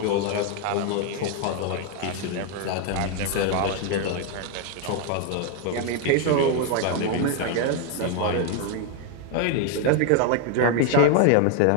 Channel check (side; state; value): both; different; correlation 0.01